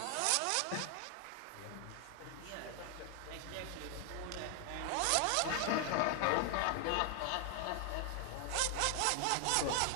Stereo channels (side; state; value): both; different; correlation 0.00